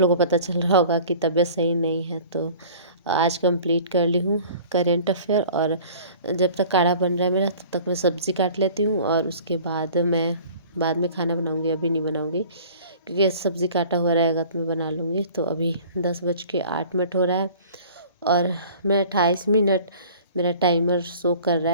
लोगों को पता चल रहा होगा कि तबीयत सही नहीं है। तो आज कंप्लीट कर ली हूँ करेंट अफेयर, और जब तक काढ़ा बन रहा है मेरा तब तक मैं सब्ज़ी काट लेती हूँ, और उसके बाद मैं बाद में खाना बनाऊँगी, अभी नहीं बनाऊँगी, क्योंकि सब्ज़ी काटा हुआ रहेगा तो मैं बना लूँगी। तो अभी 10:08 हो रहा है, और मैं 28 मिनट मेरा टाइमर शो कर रहा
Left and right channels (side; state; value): both; inverted; correlation -0.46